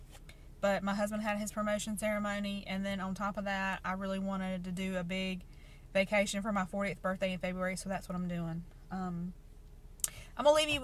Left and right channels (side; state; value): both; identical; correlation 1.00